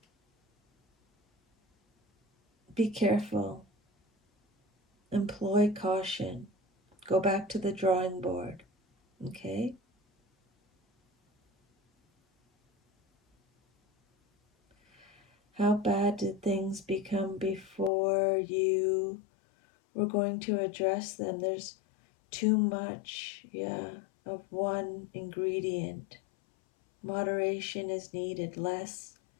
Be careful. Employ caution. Go back to the drawing board. Okay? How bad did things become before you were going to address them? There's too much, of one ingredient. Moderation is needed,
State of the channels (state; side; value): drops out; right; at 17.9 s